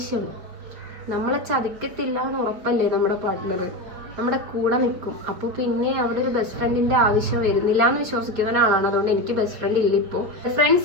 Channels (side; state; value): left; late; 5.7 ms